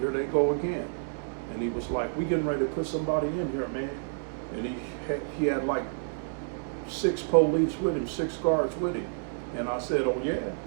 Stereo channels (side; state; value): left; silent; 58 dB below the other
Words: they go again. And he was like, we getting ready to put somebody in here, man. And he had like 6 police with him, 6 guards with him. And I said, oh yeah.